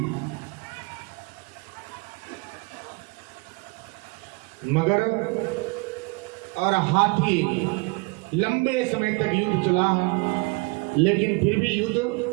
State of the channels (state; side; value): quieter; left; 28.8 dB